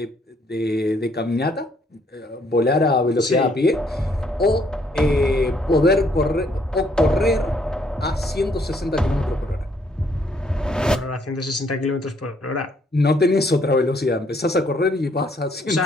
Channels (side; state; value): both; normal; correlation 0.68